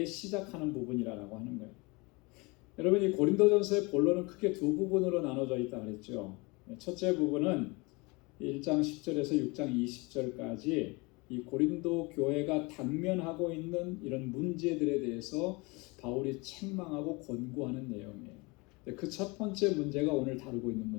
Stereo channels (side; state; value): right; quieter; 26.7 dB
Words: 시작하는 부분이라고 하는 거예요. 여러분, 이 고린도전서의 본론은 크게 두 부분으로 나눠져 있다 그랬죠. 첫째 부분은 1장 10절에서 6장 20절까지 이 고린도 교회가 당면하고 있는 이런 문제들에 대해서 바울이 책망하고 권고하는 내용이에요. 그 첫 번째 문제가 오늘 다루고 있는